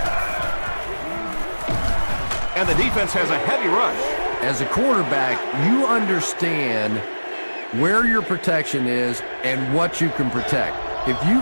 And the defense has a heavy rush. As a quarterback, you understand where your protection is and what you can protect. If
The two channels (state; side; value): inverted; both; correlation -1.00